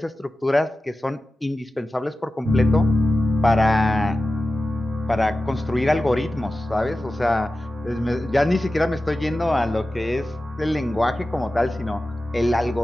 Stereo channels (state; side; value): normal; both; correlation 0.94